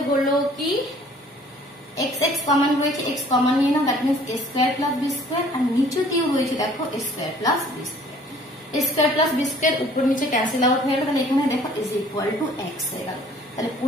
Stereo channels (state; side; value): normal; both; correlation 0.55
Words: হলো কি x কমন রয়েছে, x কমন নিয়ে নাও, that means a square plus b square, আর নিচেতেও রয়েছে দেখো a square plus b square. a square plus b square উপর নিচে ক্যান্সেল আউট হয়ে গেল। তাহলে এখানে দেখো ইজ ইকুয়াল টু x হয়ে গেল। তাহলে